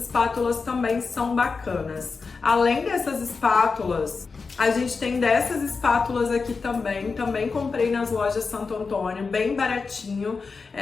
também são bacanas. Além dessas espátulas, a gente tem dessas espátulas aqui também comprei nas lojas Santo Antônio, bem baratinho.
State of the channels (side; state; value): right; quieter; 4.7 dB